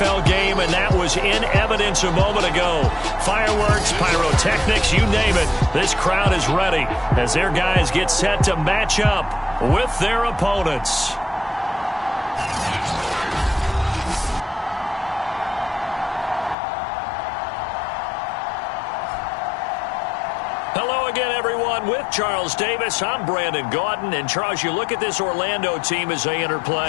game, and that was in evidence a moment ago. Fireworks, pyrotechnics, you name it. This crowd is ready as their guys get set to match up with their opponents. Hello again, everyone. With Charles Davis, I'm Brandon Gaudin. And, Charles, you look at this Orlando team as they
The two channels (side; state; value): right; drops out; at 16.6 s